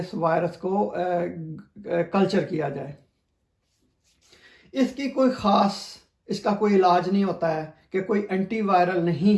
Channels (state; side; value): identical; both; correlation 1.00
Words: وائرس کو کلچر کیا جائے۔ اس کی کوئی خاص، اس کا کوئی علاج نہیں ہوتا ہے کہ کوئی اینٹی وائرل